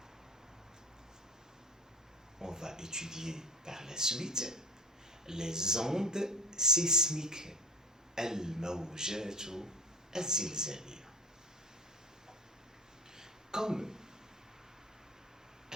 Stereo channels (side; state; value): both; normal; correlation 0.34